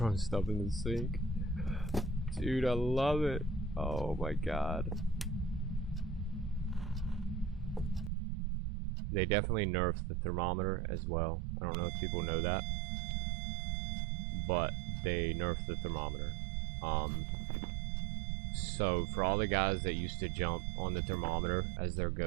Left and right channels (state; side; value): drops out; left; at 8.1 s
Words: stuff in the sink. Dude, I love it. Oh my god. They definitely nerfed the thermometer as well. I don't know if people know that, but they nerfed the thermometer. So for all the guys that used to jump on the thermometer as their